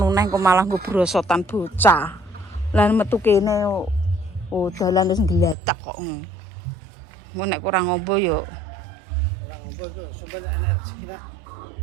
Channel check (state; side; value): drops out; left; at 5.6 s